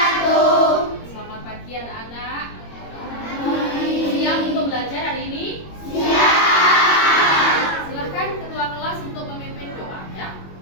Selamat pagi anak-anak. Siap untuk belajar hari ini? Siap. Silahkan ketua kelas untuk memimpin doa ya.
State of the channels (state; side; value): late; right; 21 ms